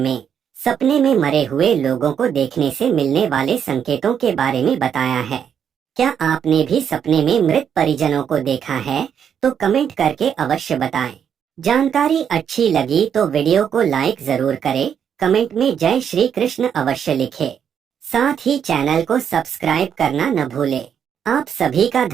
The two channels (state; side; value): quieter; left; 8.1 dB